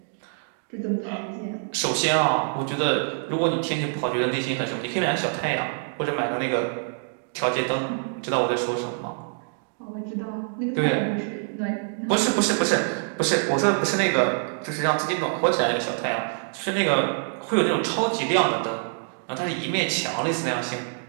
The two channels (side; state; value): left; silent; digital silence